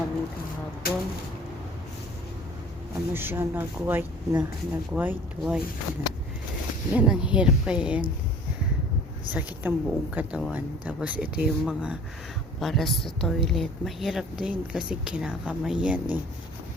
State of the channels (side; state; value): both; normal; correlation 0.48